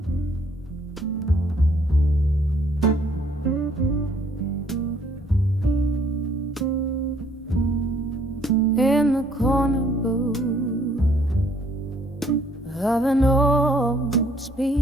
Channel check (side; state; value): both; normal; correlation 0.63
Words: In the corner booth of an old